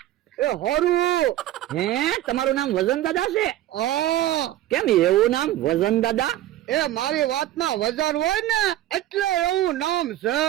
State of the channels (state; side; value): quieter; left; 13.9 dB